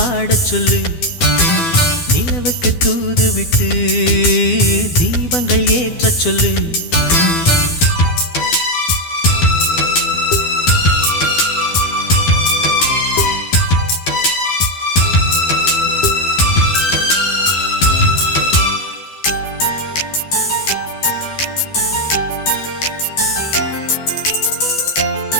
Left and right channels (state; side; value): late; right; 12 ms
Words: சொல்லு, நிலவுக்கு தூது விட்டு தீபங்கள் ஏற்றச் சொல்லு.